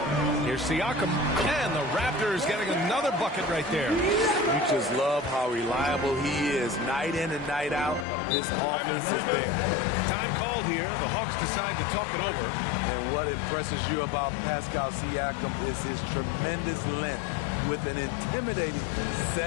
Here's Siakam. And the Raptors getting another bucket right there. You just love how reliable he is night in and night out. His offense is there. Time called here. The Hawks decide to talk it over. And what impresses you about Pascal Siakam is his tremendous length with an intimidating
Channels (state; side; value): drops out; right; at 8.1 s